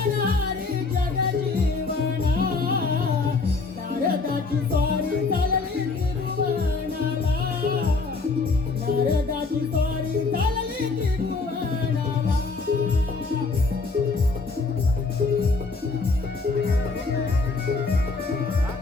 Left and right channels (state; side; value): quieter; right; 4.0 dB